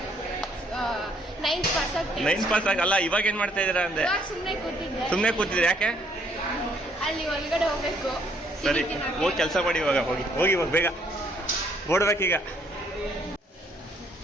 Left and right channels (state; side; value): normal; both; correlation 0.66